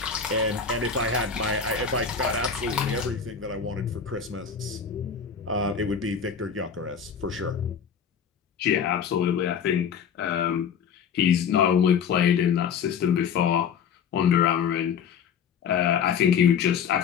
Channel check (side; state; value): right; quieter; 7.0 dB